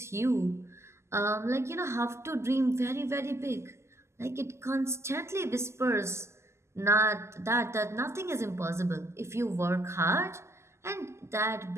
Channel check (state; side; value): late; left; 0.13 ms